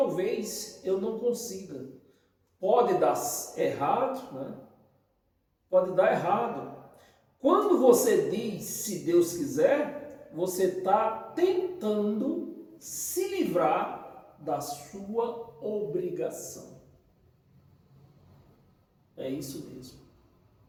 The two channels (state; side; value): identical; both; correlation 1.00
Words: eu não consiga. Pode dar errado, né? Pode dar errado. Quando você diz, se Deus quiser, você está tentando se livrar da sua obrigação. É isso mesmo.